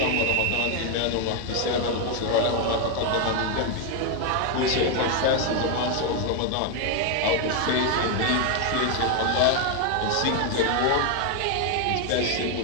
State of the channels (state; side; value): different; both; correlation 0.01